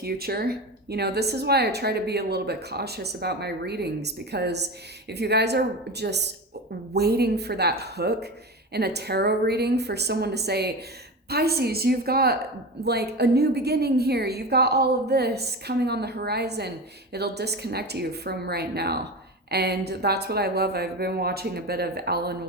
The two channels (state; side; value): normal; both; correlation 0.26